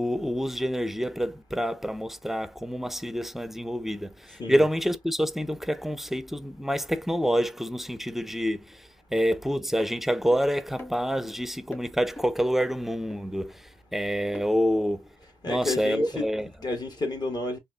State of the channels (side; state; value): both; normal; correlation 0.94